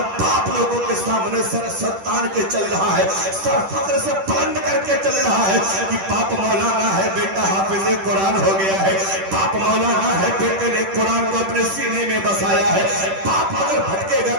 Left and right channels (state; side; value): late; left; 10 ms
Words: باپ لوگوں کے سامنے سر تان کے چل رہا ہے، سر فخر سے بلند کر کے چل رہا ہے کہ باپ مولانا ہے، بیٹا حافظ قرآن ہو گیا ہے. باپ مولانا ہے، بیٹے نے قرآن کو اپنے سینے میں بسایا ہے. باپ اگر بھٹکے گا